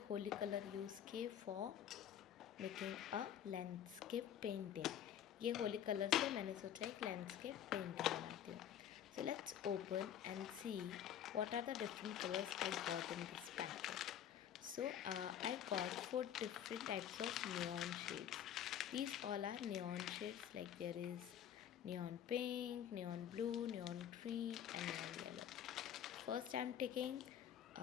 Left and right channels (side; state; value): right; quieter; 10.0 dB